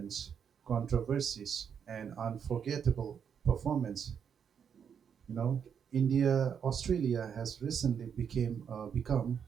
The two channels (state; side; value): quieter; left; 7.5 dB